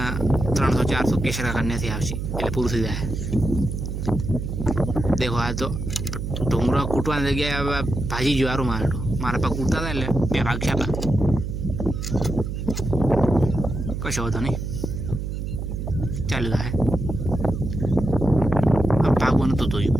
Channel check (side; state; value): right; noise; hum, 4 dB below the sound